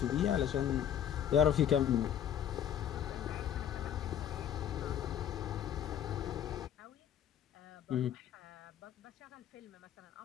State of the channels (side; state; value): right; quieter; 9.6 dB